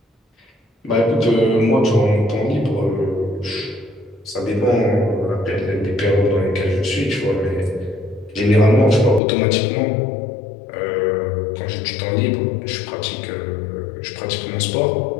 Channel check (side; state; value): right; drops out; at 9.2 s